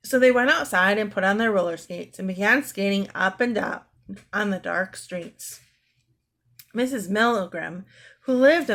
So they went outside and put on their roller skates and began skating up and down on the dark streets. Mrs. Milgram, who lived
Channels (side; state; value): both; identical; correlation 1.00